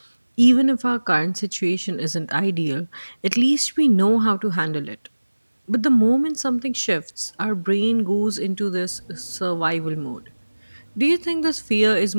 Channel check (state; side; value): inverted; both; correlation -1.00